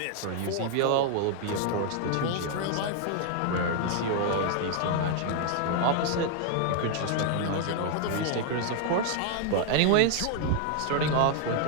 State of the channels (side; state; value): both; different; correlation 0.00